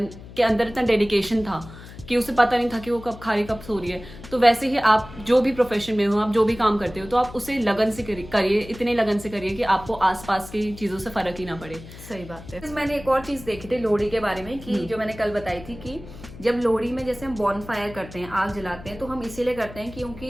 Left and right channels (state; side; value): noise; left; hum, 16 dB below the sound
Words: के अंदर इतना डेडिकेशन था कि उसे पता नहीं था कि वो कब खा रही कब सो रही है। तो वैसे ही आप जो भी प्रोफेशन में हो, आप जो भी काम करते हो, तो आप उसे लगन से करिए, इतने लगन से करिए कि आपको आसपास की चीजों से फर्क ही ना पड़े। सही बात है। मैंने एक और चीज देखी थी लोहड़ी के बारे में कि जो मैंने कल बताई थी कि जब लोहड़ी में जैसे हम बॉन फायर करते हैं, आग जलाते हैं, तो हम इसीलिए करते हैं